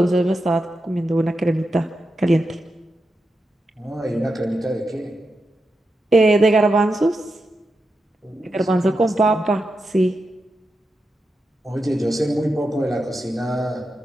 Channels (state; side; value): normal; both; correlation 0.88